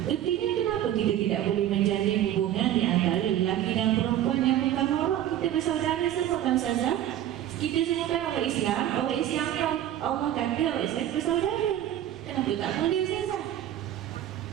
Artinya kenapa kita tidak boleh menjalin hubungan di antara lelaki dan perempuan yang bukan orang? Kita bersaudara semua kan, Ustazah? Kita semua kan orang Islam. Orang Islam yang Allah kata orang Islam bersaudara. Kenapa tak boleh, Ustazah?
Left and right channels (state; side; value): quieter; left; 11.8 dB